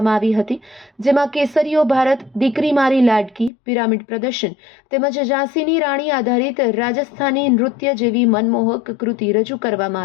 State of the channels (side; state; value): right; drops out; at 3.5 s